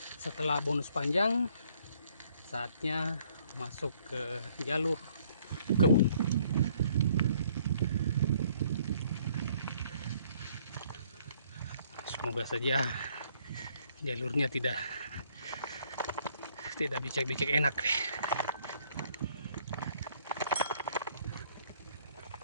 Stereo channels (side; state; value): both; inverted; correlation -0.64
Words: Setelah bonus panjang, saatnya masuk ke jalur kebun. Semoga saja jalurnya tidak becek-becek, enak.